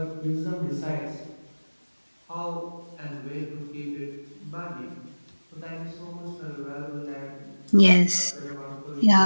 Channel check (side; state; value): both; inverted; correlation -1.00